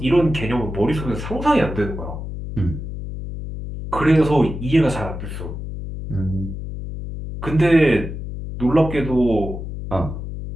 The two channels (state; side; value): noise; left; hum, 7 dB below the sound